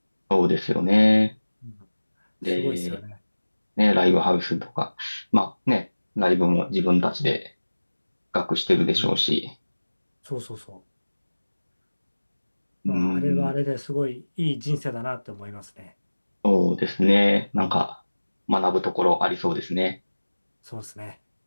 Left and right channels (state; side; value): inverted; both; correlation -1.00